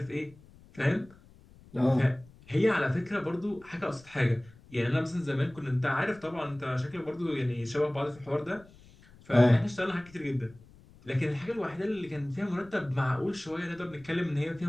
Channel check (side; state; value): left; noise; rumble, 24 dB below the sound